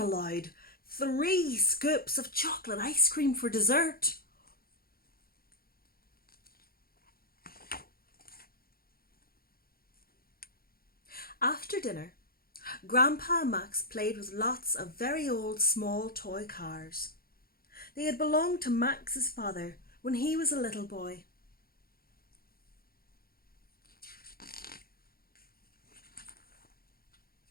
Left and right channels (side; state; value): right; late; 0.43 ms